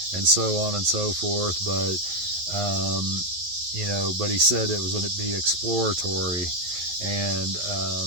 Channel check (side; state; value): left; late; 11 ms